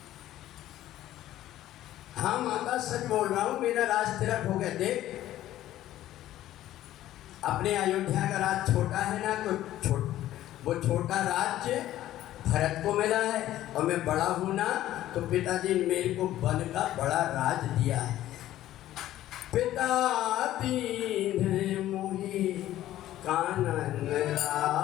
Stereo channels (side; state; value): right; quieter; 13.7 dB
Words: हाँ माता सच बोल रहा हूँ, मेरा राज तेरा खो गया। देख अपने अयोध्या का राज छोटा है ना, तो वो छोटा राज्य भरत को मिला है, और मैं बड़ा हूँ ना, तो पिताजी ने मेरे को वन का बड़ा राज दिया है। पिता दीन मोहि कानन